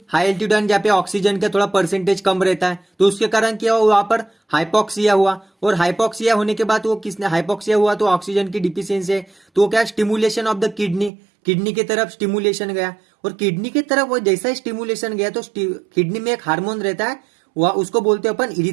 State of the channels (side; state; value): left; drops out; at 11.1 s